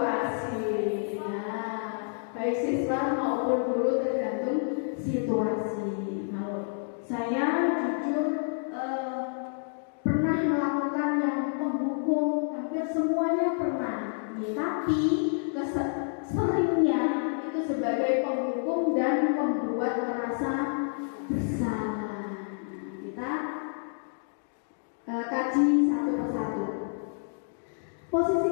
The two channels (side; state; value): right; silent; digital silence